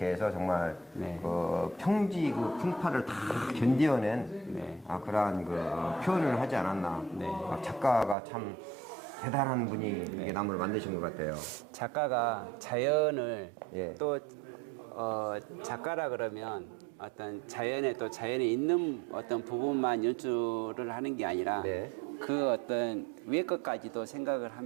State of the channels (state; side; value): drops out; left; at 8.2 s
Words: 해서 정말 네. 평지 그 풍파를 다 견뎌낸 네. 그러한 표현을 하지 않았나. 네. 작가가 참 대단한 분이 이렇게 나무를 만드신 것 같아요. 작가가 자연을 예. 또 작가라 그러면 어떤 자연에 또 자연에 있는 어떤 부분만 연출을 하는 게 아니라 네. 그 어떤 위에 것까지도 생각을